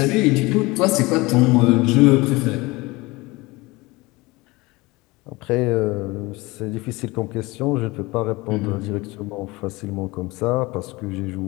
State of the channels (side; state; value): right; quieter; 22.5 dB